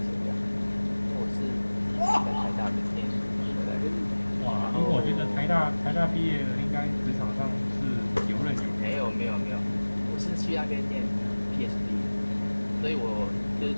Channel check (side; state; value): both; inverted; correlation -1.00